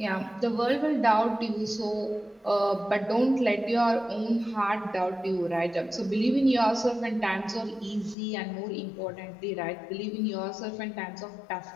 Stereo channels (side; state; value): right; drops out; at 8.2 s